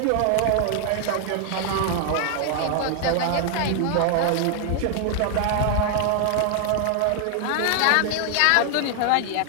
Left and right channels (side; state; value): both; different; correlation 0.00